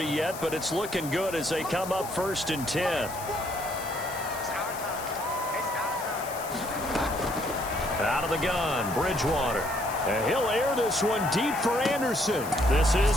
yet, but it's looking good as they come up 1st and 10. Out of the gun, Bridgewater. And he'll air this one deep for Anderson. This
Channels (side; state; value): left; noise; hiss, 12 dB below the sound